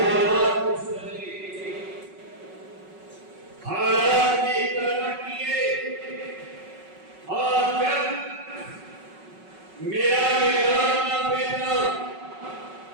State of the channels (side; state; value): left; late; 5.4 ms